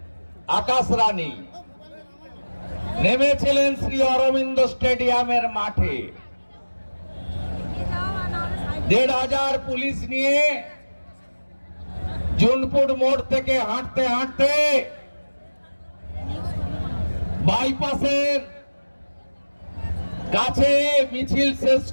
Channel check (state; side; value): inverted; both; correlation -1.00